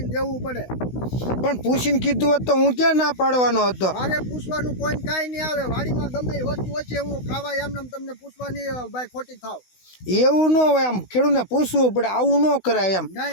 દેવું પડે. પણ પૂછીને કીધું હોત તો હું ક્યાં ના પાડવાનો હતો? મારે પૂછવાનું કોઈ કાંઈ નહીં આવે. વાડીમાં ગમે એ વસ્તુ હોય છે હું ખાવા એમને તમને પૂછવાની ભાઈ ખોટી થાવ. એવું ન હોય. આમ ખેડૂતને પૂછવું પડે, આવું ન કરાય. એમ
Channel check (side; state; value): right; late; 16 ms